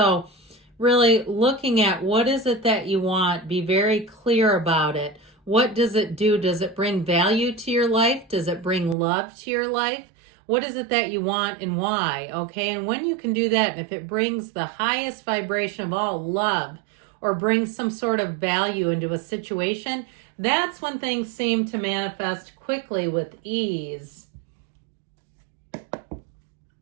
really looking at what is it that you want, be very clear about it. What does it do? Does it bring value to your life? Does it bring love to your life? What is it that you want and why? Okay, and when you can do that, and if it brings the highest vibration of all, love, or brings some sort of value into a situation, that's when things seem to manifest quickly with ease.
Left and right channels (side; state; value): left; drops out; at 9.0 s